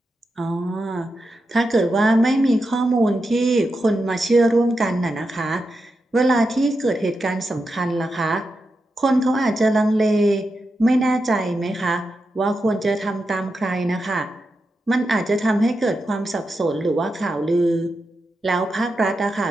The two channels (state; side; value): normal; both; correlation 0.88